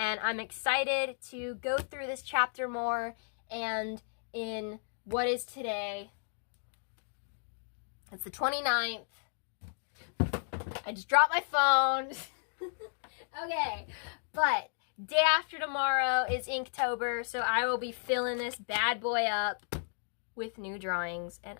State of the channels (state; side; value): silent; right; digital silence